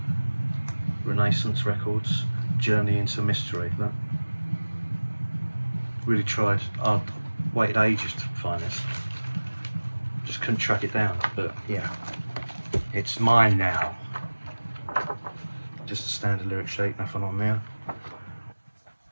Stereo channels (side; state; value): both; inverted; correlation -1.00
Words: Renaissance Records, Journey into Mystery. Look. Really tried. I waited ages to find this. Just couldn't track it down, but yeah, it's mine now. Just a standard lyric sheet, nothing on there.